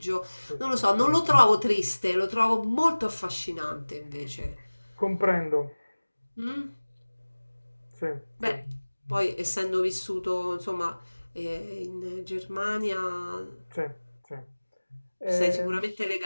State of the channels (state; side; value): inverted; both; correlation -1.00